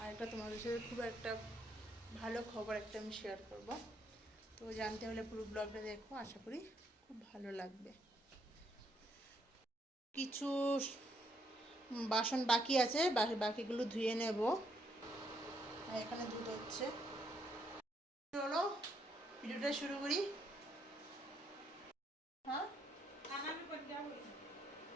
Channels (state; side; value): normal; both; correlation 0.73